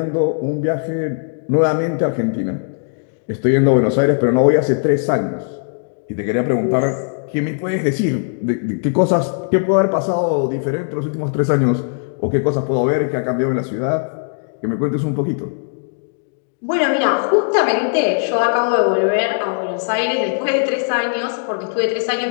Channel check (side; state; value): right; silent; digital silence